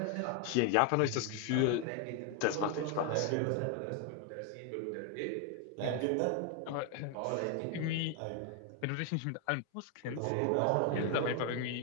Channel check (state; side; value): different; both; correlation 0.01